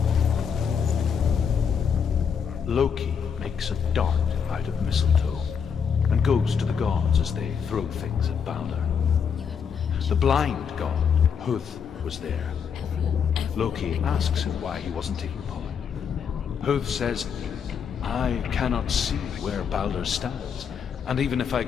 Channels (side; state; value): right; quieter; 6.9 dB